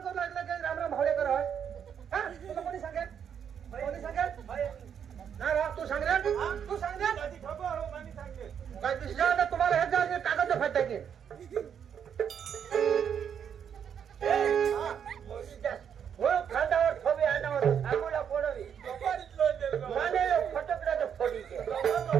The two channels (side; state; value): left; quieter; 8.1 dB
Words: करू लागलं की राम राम भावड्या कर हा तुला कोणी सांगेल कोणी सांगेल ना राव तू सांग रे तू सांग रे काय दिसलं तुम्हाला हे जागे कागद फाटते की खांद्यावर ठोवी आणावर आंघोळा फोडवी माने फटकड्याचं फोडी